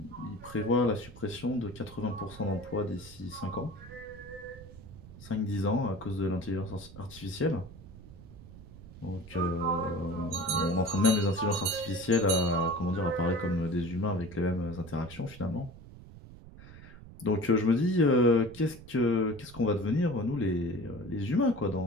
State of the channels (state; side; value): noise; right; rumble, 17 dB below the sound